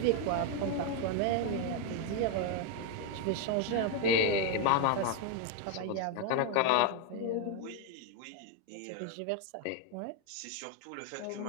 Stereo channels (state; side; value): different; both; correlation 0.01